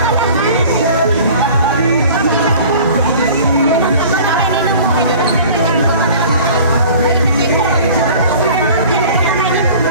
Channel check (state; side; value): inverted; both; correlation -0.45